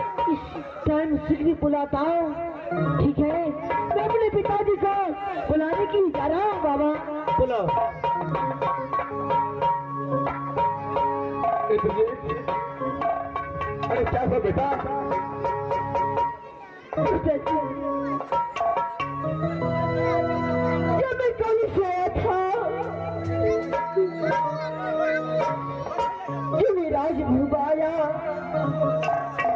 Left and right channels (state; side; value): identical; both; correlation 1.00